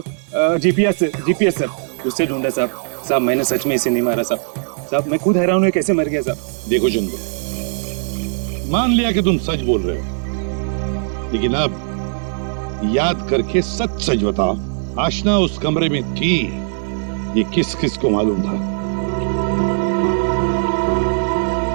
जीपीएस सर, उससे ढूंढा साहब। साहब मैंने सच में इसे नहीं मारा साहब। साहब मैं खुद हैरान हूँ कैसे मर गया साहब। देखो चंदू, मान लिया कि तुम सच बोल रहे हो, लेकिन अब याद करके सच सच बताओ, आशना उस कमरे में थी, ये किस किस को मालूम था?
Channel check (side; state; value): left; silent; 66 dB below the other